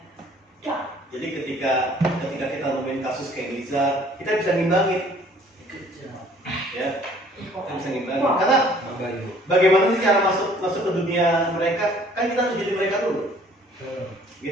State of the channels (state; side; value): normal; both; correlation 0.56